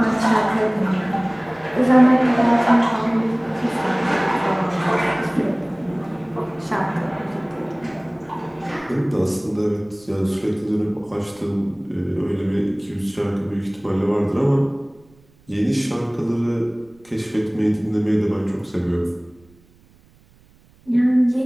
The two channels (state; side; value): noise; right; rumble, 30 dB below the sound